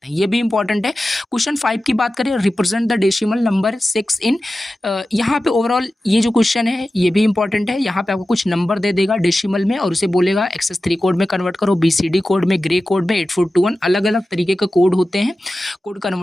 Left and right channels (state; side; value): normal; both; correlation 0.94